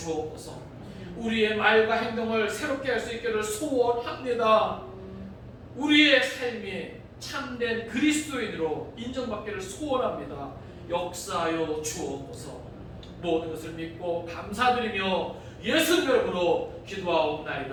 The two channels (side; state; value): both; identical; correlation 1.00